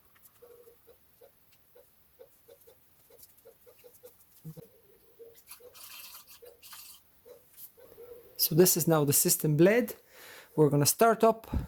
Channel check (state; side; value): identical; both; correlation 1.00